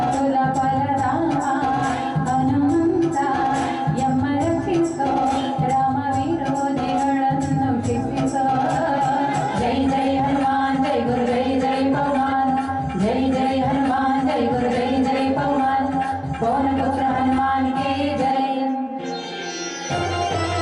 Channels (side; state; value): both; identical; correlation 1.00